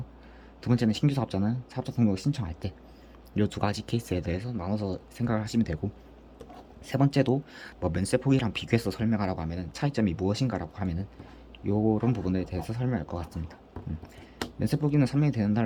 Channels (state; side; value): identical; both; correlation 1.00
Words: 두 번째는 신규 사업자는 사업자 등록을 신청할 때, 이 두 가지 케이스에 대해서 나눠서 생각을 하시면 되고, 세 번째도 뭐 면세 포기랑 비교해서 설명하라고 하면은 차이점이 무엇인가라고 하면은 요런 부분에 대해서 설명할 것 같습니다. 면세 포기는 3년이 되는